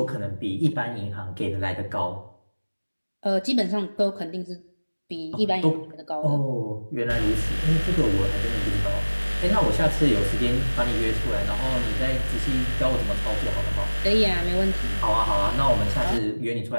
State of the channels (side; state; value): both; inverted; correlation -1.00